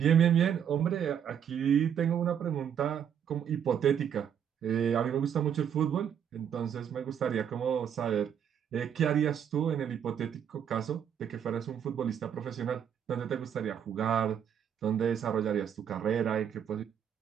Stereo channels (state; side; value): quieter; left; 8.6 dB